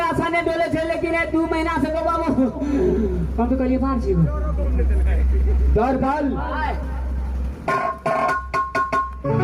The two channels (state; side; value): identical; both; correlation 1.00